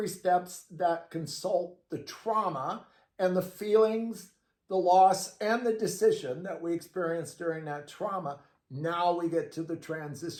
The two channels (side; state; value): both; identical; correlation 1.00